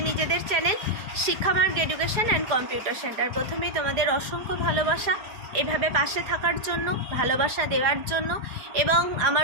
নিজেদের channel Shikshamarg education and computer centre. প্রথমেই তোমাদের অসংখ্য ভালোবাসা এভাবে পাশে থাকার জন্য, ভালোবাসা দেওয়ার জন্য, এবং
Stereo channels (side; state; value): left; late; 4.8 ms